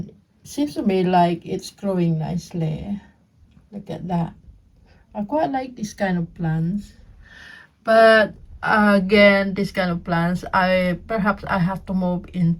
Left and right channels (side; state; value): both; identical; correlation 1.00